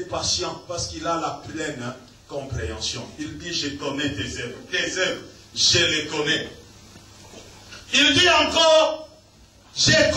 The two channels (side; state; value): both; identical; correlation 1.00